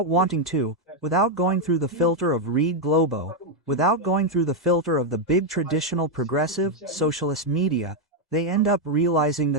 wanting to, without going through the filter of Rede Globo, without going through the filter of the big traditional progressive, socialist media, they end up realizing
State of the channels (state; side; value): normal; both; correlation 0.01